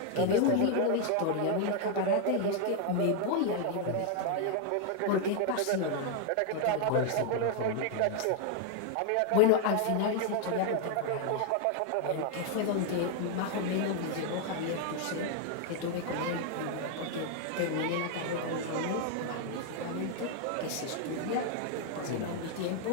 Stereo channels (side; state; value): both; different; correlation 0.00